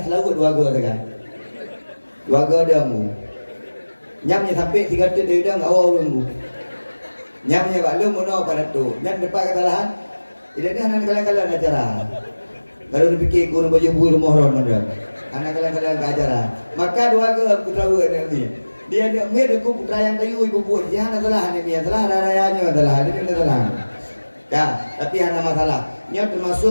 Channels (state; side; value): inverted; both; correlation -1.00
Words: selalu dua ga kan. Dua ga dia mu. Nyamnya sampai 3 tit dia enggak awal mu. Nyamnya bak lu mono pada tu. Nyam depan kesalahan. Tidak ni hana kalian-kalian acara. Kalau dipikir guna baju hubu rumah ron ada. Hana kalian-kalian acara. Maka dua ga putra ni. Dia aku putra yang kayu ibu buat jangan salah ni salah rayanya salah ini salah ya tapi hanya masalah nya